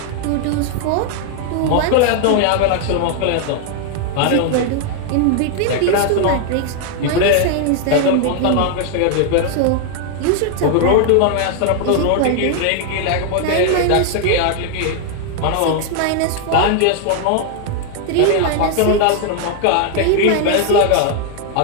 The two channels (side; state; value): both; different; correlation 0.00